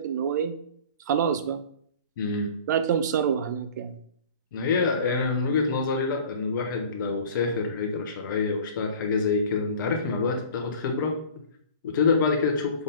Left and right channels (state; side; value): inverted; both; correlation -0.44